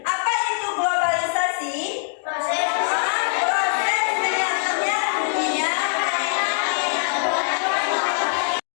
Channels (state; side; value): silent; right; digital silence